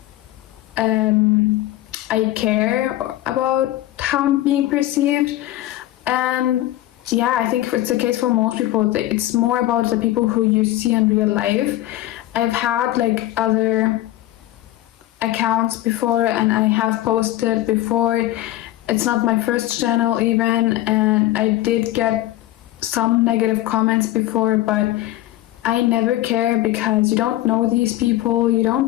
I care about how I'm being perceived. And yeah, I think it's the case for most people. It's more about the people who you see in real life. I've had like other accounts before, and I have posted before. It's not my first channel even, and I did get some negative comments before, but I never care, because you don't know these people, you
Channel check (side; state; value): right; quieter; 15.2 dB